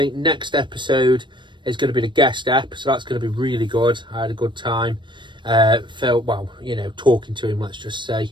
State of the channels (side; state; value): left; late; 0.23 ms